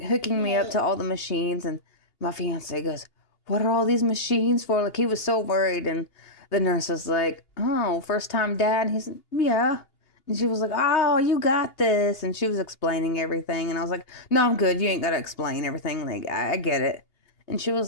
me up to all the machines, and my fiance goes, what are all these machines for? Like, he was so worried. And the nurse was like, oh, first time dad? And he said, yeah. And she was like, oh, you got this. And she was explaining everything. And I was like, no, I'm good. You ain't got to explain everything. Like, I get it. And she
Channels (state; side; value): late; right; 2.8 ms